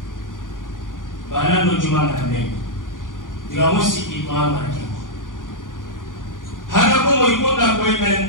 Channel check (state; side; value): late; right; 0.89 ms